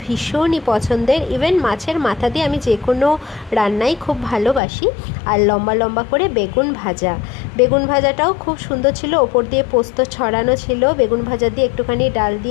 ভীষণই পছন্দের। ইভেন মাছের মাথা দিয়ে আমি যে কোনো রান্নাই খুব ভালোবাসি। আর লম্বা লম্বা করে বেগুন ভাজা, বেগুন ভাজাটাও খুব সুন্দর ছিল, ওপর দিয়ে পোস্ত ছড়ানো ছিল। বেগুন ভাজা দিয়ে একটুখানি ডাল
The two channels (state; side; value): drops out; right; at 4.6 s